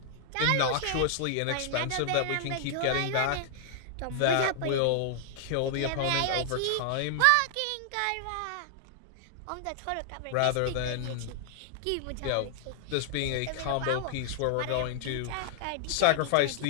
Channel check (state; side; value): different; both; correlation 0.00